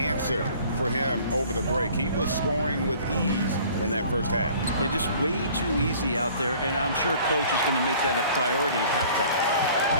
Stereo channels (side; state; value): both; inverted; correlation -0.51